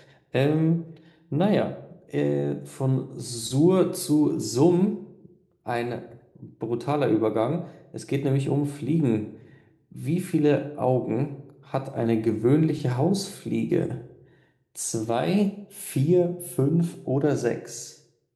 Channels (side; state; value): both; identical; correlation 1.00